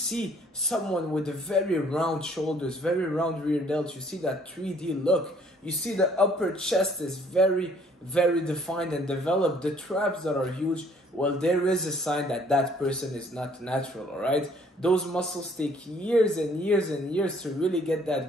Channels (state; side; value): normal; both; correlation 0.61